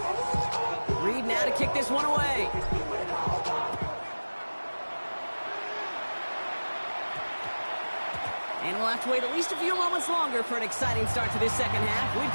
Reed now to kick this one away. And we'll have to wait at least a few moments longer for an exciting start to this second half. We've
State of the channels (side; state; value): both; inverted; correlation -1.00